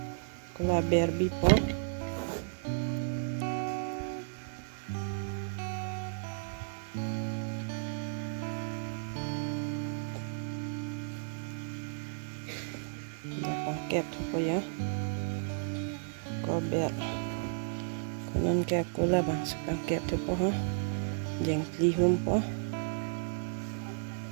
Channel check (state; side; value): silent; left; digital silence